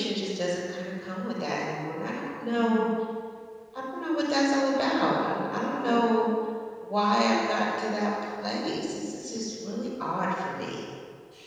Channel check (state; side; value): identical; both; correlation 1.00